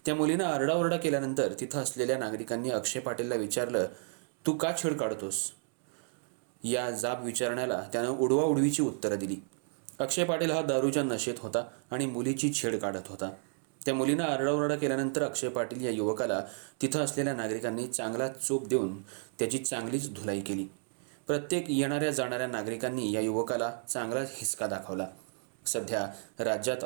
त्या मुलीनं आरडाओरडा केल्यानंतर तिथं असलेल्या नागरिकांनी अक्षय पाटीलला विचारलं, तू का छेड काढतोस? या जाब विचारण्याला त्यानं उडवाउडवीची उत्तरं दिली. अक्षय पाटील हा दारूच्या नशेत होता आणि मुलीची छेड काढत होता. त्या मुलीनं आरडाओरडा केल्यानंतर अक्षय पाटील या युवकाला तिथं असलेल्या नागरिकांनी चांगला चोप देऊन त्याची चांगलीच धुलाई केली. प्रत्येक येणाऱ्या जाणाऱ्या नागरिकांनी या युवकाला चांगलाच हिसका दाखवला. सध्या राज्यात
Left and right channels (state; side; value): silent; left; 56 dB below the other